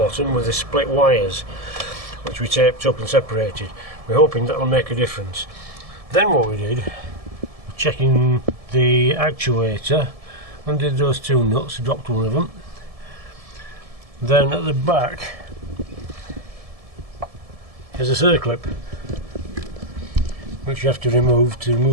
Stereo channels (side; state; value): left; late; 1.7 ms